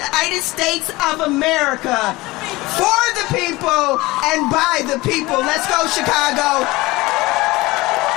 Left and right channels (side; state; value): right; quieter; 20.7 dB